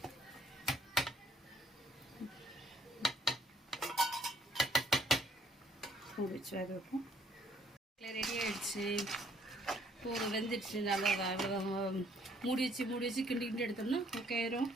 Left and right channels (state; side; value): normal; both; correlation 0.64